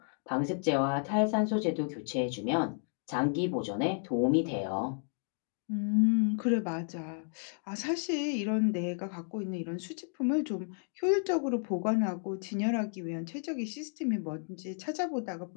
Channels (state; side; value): silent; right; 56 dB below the other